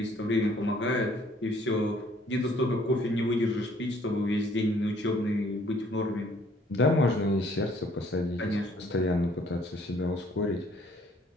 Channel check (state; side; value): normal; both; correlation 0.61